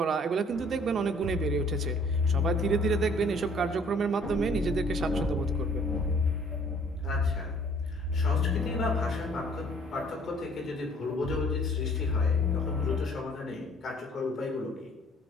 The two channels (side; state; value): both; normal; correlation 0.57